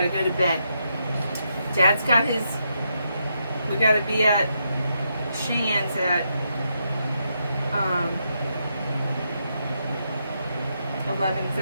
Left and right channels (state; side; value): inverted; both; correlation -0.81